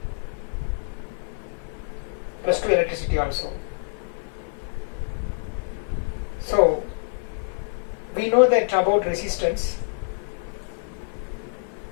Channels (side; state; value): right; silent; 56 dB below the other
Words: plus 2 electricity also. So we know that about resistance.